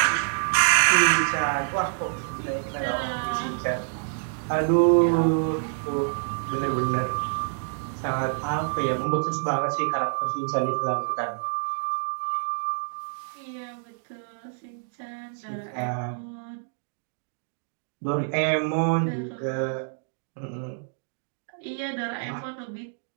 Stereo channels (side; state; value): left; silent; digital silence